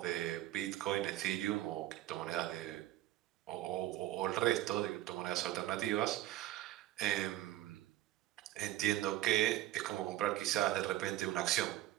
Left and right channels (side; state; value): left; quieter; 14.5 dB